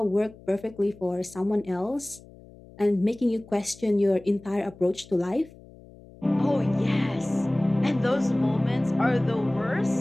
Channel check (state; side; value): noise; left; hum, 22 dB below the sound